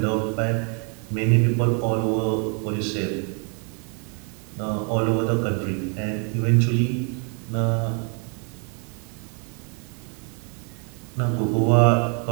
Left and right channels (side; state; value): left; quieter; 37.2 dB